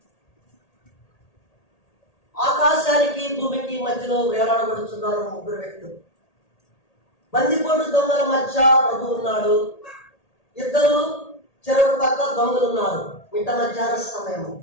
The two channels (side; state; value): right; late; 1.8 ms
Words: ఆకాశానికి భూమికి మధ్యలో వేలాడబడుతున్నారు ముగ్గురు వ్యక్తులు. బందిపోటు దొంగల మధ్య ప్రభు ఉన్నాడు. ఇద్దరు చెరువు పక్క దొంగలు ఉన్నారు. మిట్ట మధ్యాహ్న సమయం.